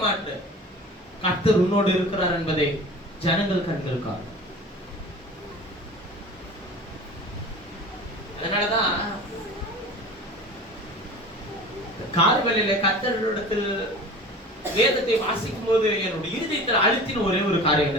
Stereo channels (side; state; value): both; normal; correlation 0.38